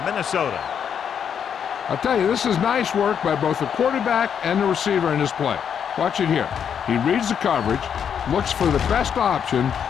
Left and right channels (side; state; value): right; quieter; 7.9 dB